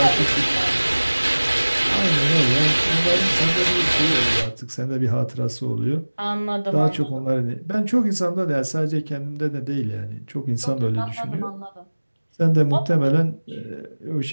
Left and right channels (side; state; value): both; inverted; correlation -1.00